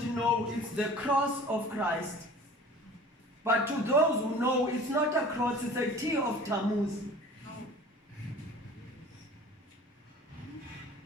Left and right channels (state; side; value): normal; both; correlation 0.44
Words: know, it's the cross of Christ. But to those who know, it's not a cross, it's a T of Tammuz.